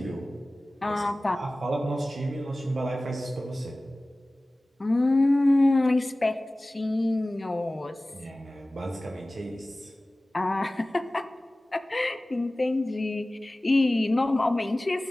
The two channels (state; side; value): normal; both; correlation 0.97